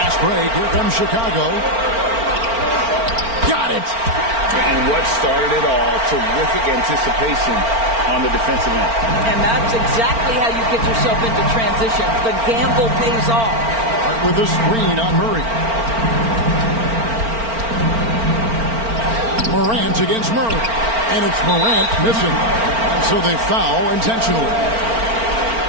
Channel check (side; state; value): left; late; 4.4 ms